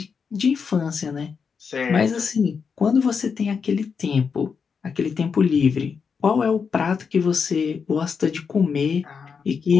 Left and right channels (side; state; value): right; quieter; 5.9 dB